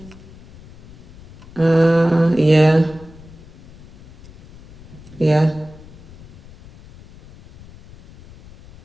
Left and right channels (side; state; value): left; noise; rumble, 21 dB below the sound